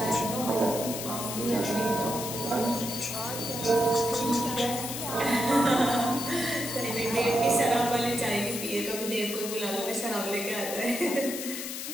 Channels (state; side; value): noise; left; hiss, 6 dB below the sound